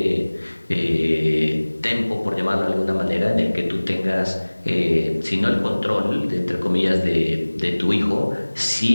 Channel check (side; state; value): both; inverted; correlation -1.00